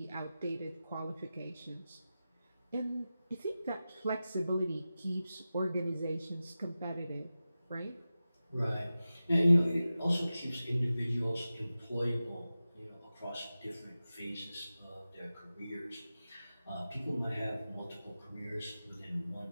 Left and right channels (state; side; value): inverted; both; correlation -0.94